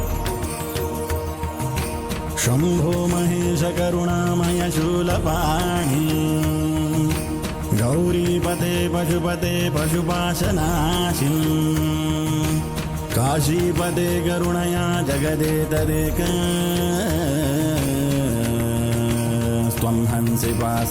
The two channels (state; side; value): identical; both; correlation 1.00